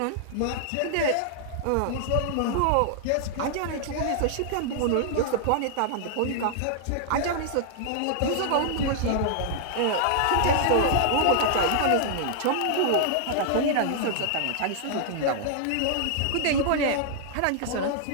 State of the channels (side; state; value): both; different; correlation -0.01